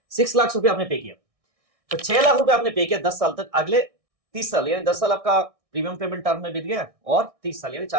6 लाख रुपए आपने पे किया, तो 6 लाख रुपए आपने पे किया 10 साल तक। अगले 30 साल यानी 10 साल आपका प्रीमियम पेमेंट टर्म में बीत गया और 30 साल यानी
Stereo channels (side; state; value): left; late; 1.6 ms